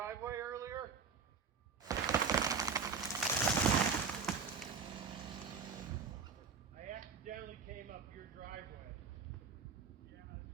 earlier? I accidentally came up your driveway.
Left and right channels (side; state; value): left; quieter; 5.5 dB